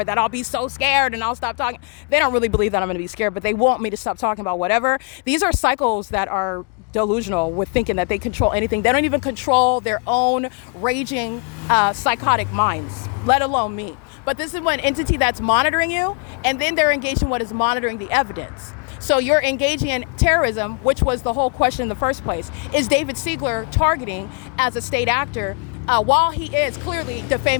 that I'll be so scared and I'll stop talking. They don't really believe that I'm going to be scared, but they want me to stop talking about whatever. These are cycles that are delusional with thinking that they control anything. They don't even control their own raging, psychotic minds, let alone me. But this is one entity that's monitoring you, and then they're engaged in what is monitoring the evidence. So you're engaging in terrorism, which was the whole question in the first place. Is David Siegler targeting as a state actor while he is clearly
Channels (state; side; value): quieter; right; 37.1 dB